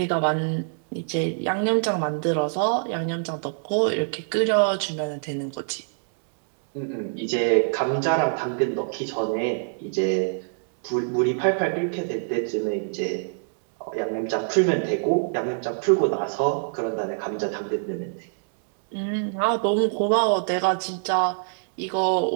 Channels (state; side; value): silent; left; digital silence